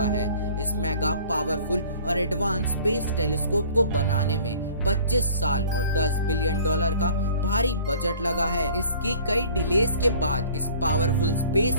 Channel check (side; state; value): both; inverted; correlation -0.49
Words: है। इस मेगा पावरफुल और एडवांस स्पेस टेलीस्कोप को बनाने में 25 साल और $10 बिलियन का भारी बजट लगा है। इसकी कई डिलेस के बाद इस पावरफुल